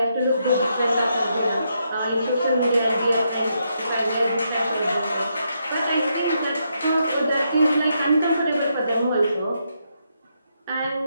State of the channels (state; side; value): inverted; both; correlation -0.79